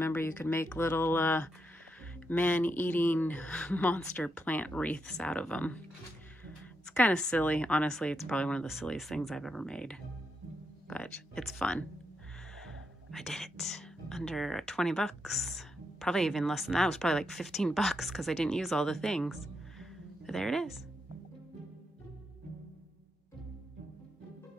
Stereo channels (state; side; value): normal; both; correlation 0.83